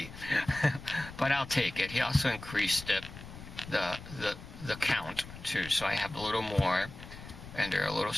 But I'll take it. He also increased it, the count too, so I have a little more and they're a little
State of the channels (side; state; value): left; noise; rumble, 14 dB below the sound